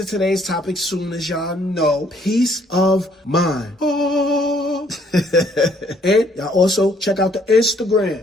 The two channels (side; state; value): both; normal; correlation 0.65